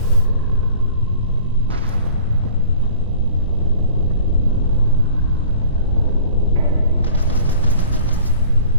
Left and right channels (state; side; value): inverted; both; correlation -0.45